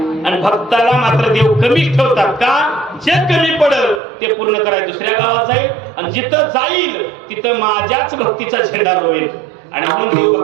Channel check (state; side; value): drops out; left; at 4.0 s